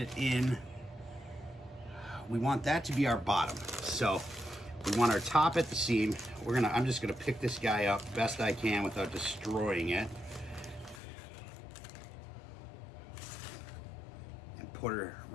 in. We want that to be our bottom. So we want our top at the seam. I'm just gonna pick this guy up best I can without destroying it. And put her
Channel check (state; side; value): drops out; right; at 11.0 s